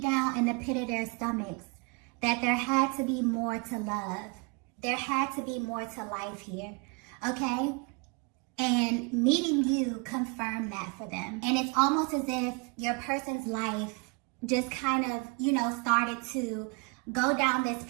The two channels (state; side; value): quieter; left; 32.1 dB